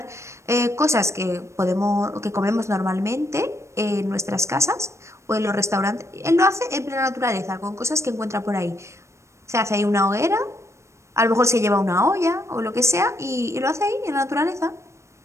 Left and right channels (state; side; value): late; left; 0.14 ms